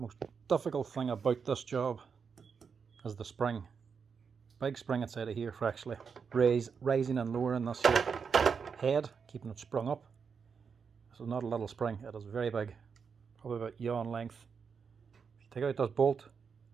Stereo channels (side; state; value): left; quieter; 6.0 dB